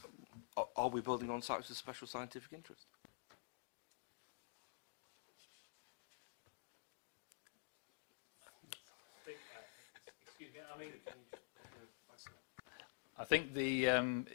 we building on sites of special scientific interest? I think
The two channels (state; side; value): silent; right; digital silence